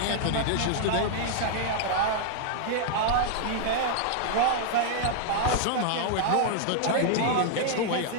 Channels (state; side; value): different; both; correlation 0.00